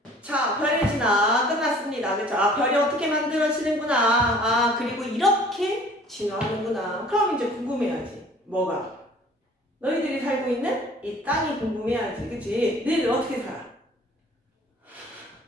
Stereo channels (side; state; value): both; normal; correlation 0.51